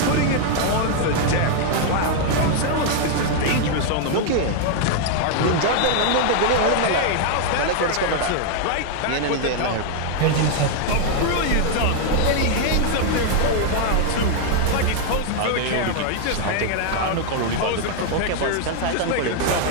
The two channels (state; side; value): different; both; correlation 0.00